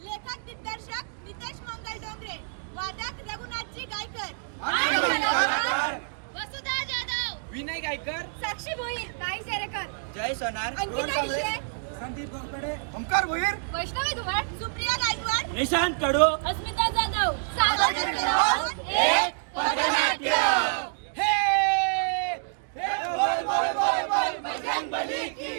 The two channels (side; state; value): left; silent; digital silence